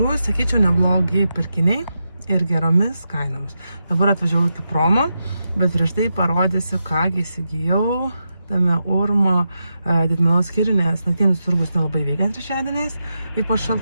sakyčiau, neblogi pirkiniai ir geromis kainomis. Dabar atvažiavau iki promo, bet prieš tai parodysiu, ką įsigijau tame Urmo didmenos skyrių, nes naktinis turgus nelabai veikia trečiadieniais, ypač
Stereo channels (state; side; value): inverted; both; correlation -0.87